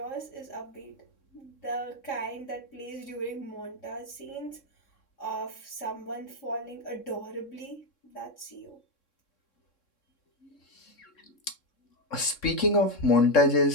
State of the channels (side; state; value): right; late; 3.7 ms